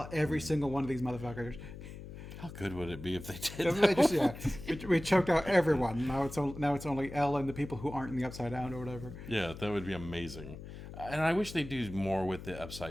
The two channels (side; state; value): left; noise; hum, 12 dB below the sound